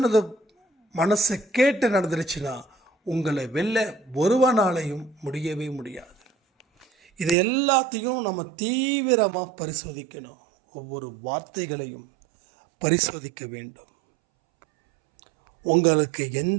மனசை கேட்டு நடந்துருச்சுன்னா உங்களை வெல்ல ஒருவனாலையும் முடியவே முடியாது. இது எல்லாத்தையும் நம்ம தீவிரமாக பரிசோதிக்கணும். ஒவ்வொரு வார்த்தைகளையும் பரிசோதிக்க வேண்டும். உங்களுக்கு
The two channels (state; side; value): drops out; left; at 7.4 s